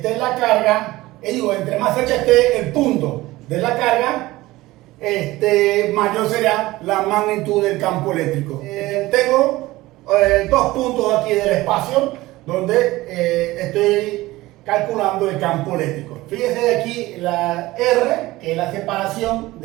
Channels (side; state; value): left; quieter; 18.5 dB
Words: la carga, entre más cerca esté el punto de la carga, mayor será la magnitud del campo eléctrico. Tengo 2 puntos aquí del espacio donde estoy calculando el campo eléctrico. Fíjese aquí la R, que es la separación